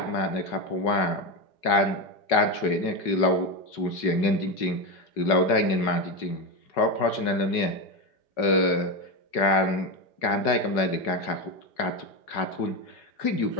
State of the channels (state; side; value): late; right; 5.3 ms